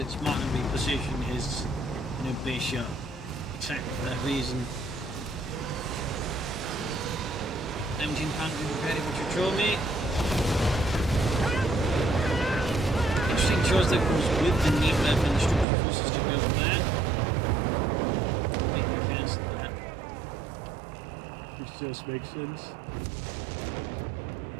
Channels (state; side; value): drops out; left; at 15.7 s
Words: smart and repositioned his bishop. Exactly for that reason. 1700 ready for Chochomie. Interesting choice that goes with the knee left and the structural forces to go for that. Make me cancel that. Which just makes sense.